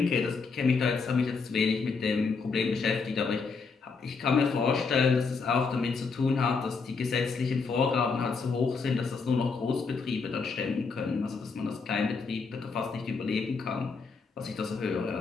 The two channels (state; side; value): quieter; right; 4.8 dB